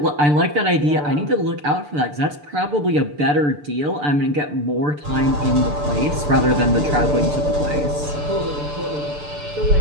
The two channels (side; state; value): left; late; 6.8 ms